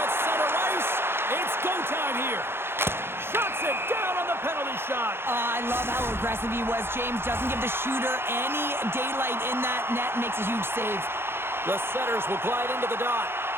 center ice. It's go time here. Shuts it down on the penalty shot. I love how aggressive he was, James. Doesn't give the shooter any daylight in that net. Makes a huge save. The setters will glide into the dot.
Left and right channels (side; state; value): left; late; 0.11 ms